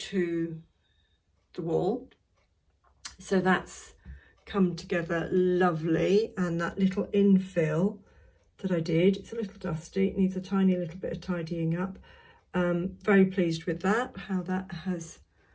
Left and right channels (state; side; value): identical; both; correlation 1.00